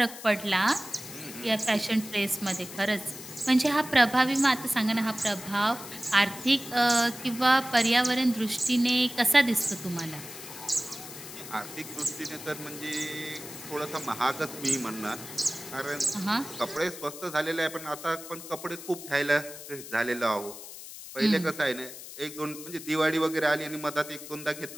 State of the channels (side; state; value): left; noise; hiss, 13 dB below the sound